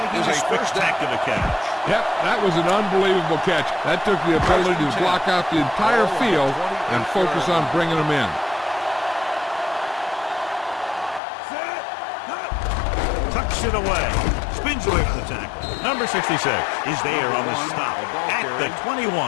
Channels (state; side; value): drops out; right; at 11.2 s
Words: a spectacular catch. Yep, that was an unbelievable catch. That took the ability to block out the entire field and focus on bringing them in. Tucks it away. Spins away from the tackle. Number 66 is there on the stop at the 21.